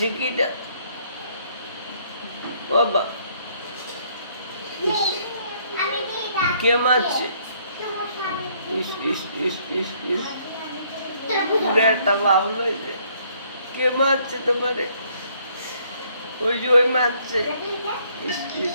কিটা? বাবা, ইস, কে মারছে? ইস ইস ইস ইস ইস, পুরো একটা বাবল হয়েছে। কে মারছে তোমারে? ওই যে ওই মারছে। ইস ইস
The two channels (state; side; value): inverted; both; correlation -0.66